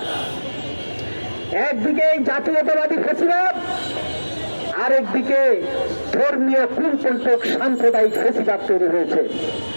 একদিকে জাতীয়তাবাদী ফ্যাসিবাদ, আরেকদিকে ধর্মীয় কুলপন্থক সাম্প্রদায়িক ফ্যাসিবাদ তৈরি হয়েছে।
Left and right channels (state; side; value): inverted; both; correlation -1.00